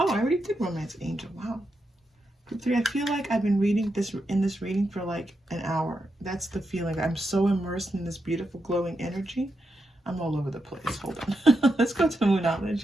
I already did romance angel. Wow. Group 3, I feel like I've been reading this reading for like an hour. That's the feeling. I'm so immersed in this beautiful glowing energy. I'm all over the place. Hold on. Let's go to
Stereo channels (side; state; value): both; normal; correlation 0.85